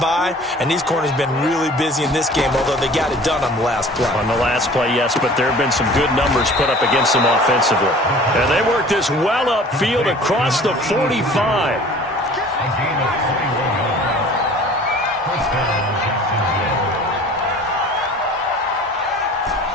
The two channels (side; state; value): both; normal; correlation 0.46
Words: and these corners have been really busy in this game, although they got it done on the last play. On the last play, yes, but there have been some good numbers put up against them offensively. And they work this well upfield across the 45.